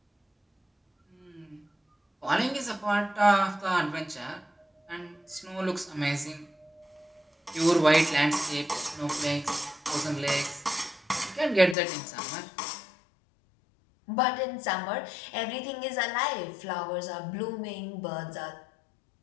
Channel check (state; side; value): drops out; right; at 11.8 s